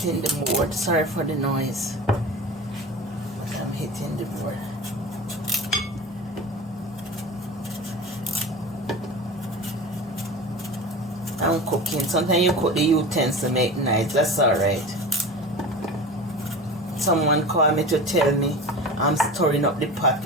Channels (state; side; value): normal; both; correlation 0.33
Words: the board. Sorry for the noise. But I'm hitting the board. I'm cooking. Sometimes you cook the utensils to make nice. That's alright. Someone called me to tell me I'm stirring up the pot